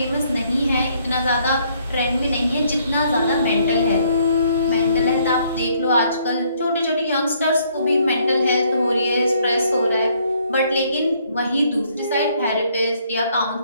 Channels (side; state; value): both; inverted; correlation -0.67